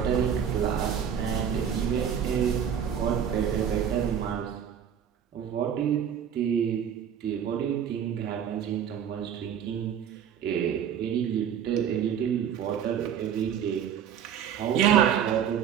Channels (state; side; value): quieter; left; 8.6 dB